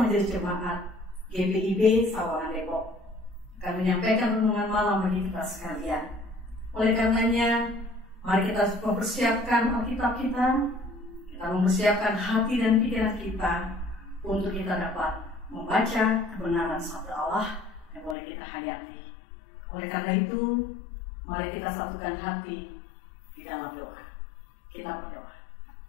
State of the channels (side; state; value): right; drops out; at 18.2 s